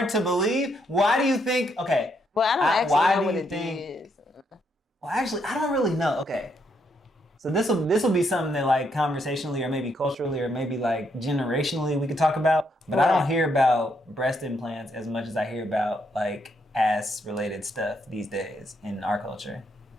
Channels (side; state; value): both; normal; correlation 0.76